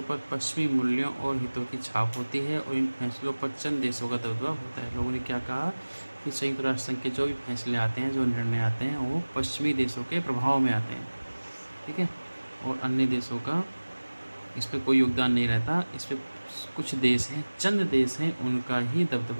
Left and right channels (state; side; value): inverted; both; correlation -1.00